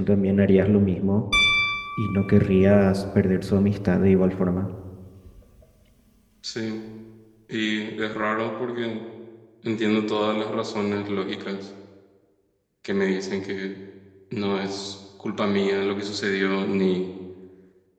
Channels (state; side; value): identical; both; correlation 1.00